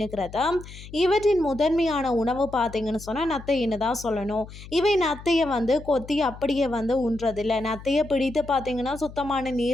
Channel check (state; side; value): noise; left; hum, 16 dB below the sound